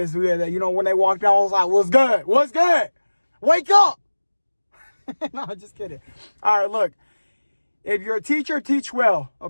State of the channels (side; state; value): both; inverted; correlation -1.00